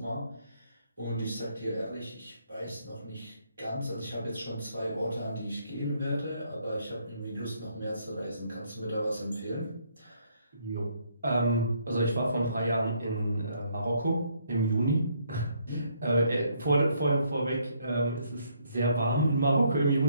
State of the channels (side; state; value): both; inverted; correlation -0.70